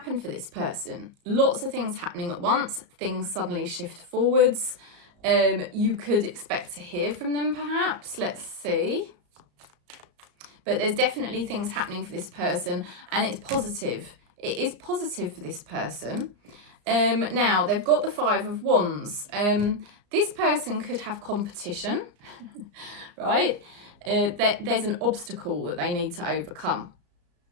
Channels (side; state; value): left; late; 34 ms